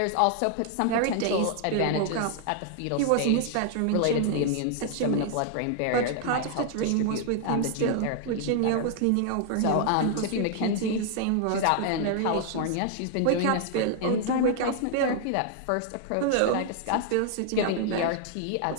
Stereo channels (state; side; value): different; both; correlation 0.00